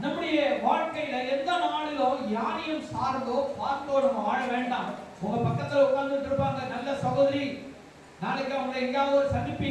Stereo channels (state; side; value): identical; both; correlation 1.00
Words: நம்முடைய வாழ்க்கையில எந்த நாளிலும் யாரையும் சார்ந்தோ பார்த்தோ நம்ம வாழ வேண்டாம். உங்க பக்கத்துல உட்கார்ந்துட்டு இருப்பாங்க நல்ல சகோதரி, நாளைக்கு அவங்க எங்கேயாவது ஒரு